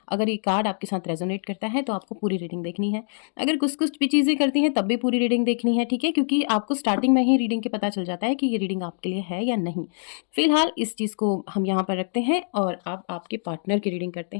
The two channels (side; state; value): right; silent; digital silence